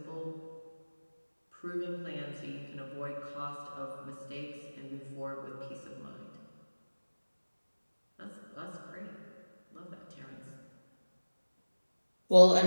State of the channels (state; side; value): inverted; both; correlation -1.00